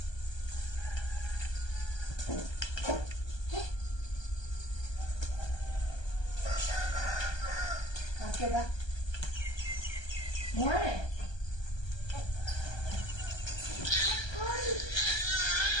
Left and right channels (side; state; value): right; late; 1.2 ms